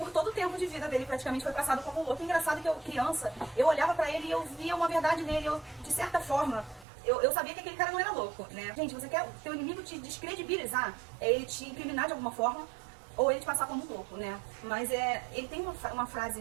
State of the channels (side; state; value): left; drops out; at 6.9 s